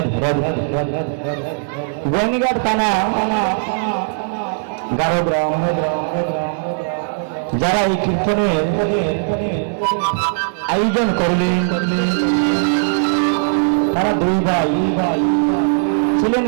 গোয়ানীঘাট থানা গারোগ্রাম, যারা এই কীর্তনের আয়োজন করলেন, তারা দুই ভাই ছিলেন।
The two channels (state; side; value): silent; left; 67 dB below the other